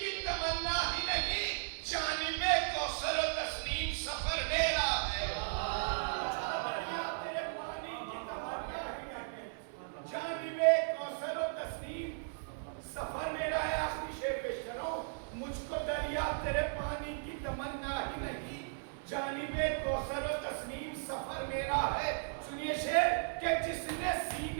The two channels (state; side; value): silent; left; 54 dB below the other